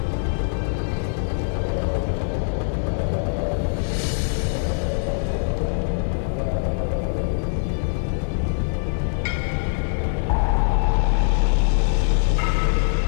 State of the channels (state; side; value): silent; right; digital silence